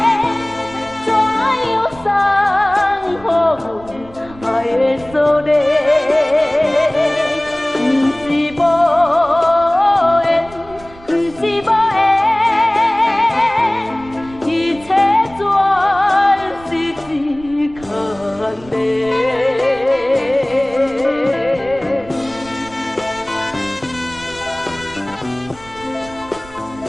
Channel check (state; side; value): noise; right; rumble, 21 dB below the sound